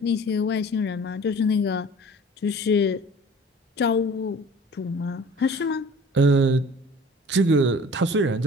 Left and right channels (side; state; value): both; normal; correlation 0.46